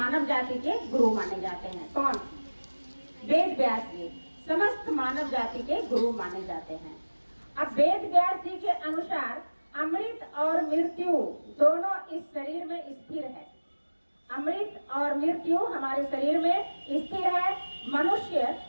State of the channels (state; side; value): inverted; both; correlation -1.00